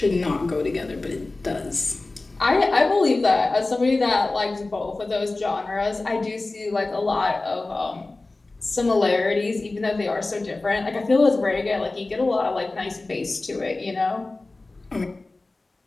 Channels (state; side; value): quieter; right; 3.2 dB